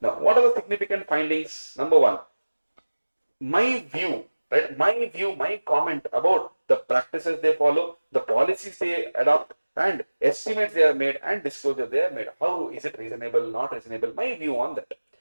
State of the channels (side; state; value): both; inverted; correlation -1.00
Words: Now, what are the significant findings? Number 1, my view, right? My comment about the practices they follow, the policies they adopt, and estimates they have made and disclosure they have made. How is it reasonable, not reasonable? My view on that.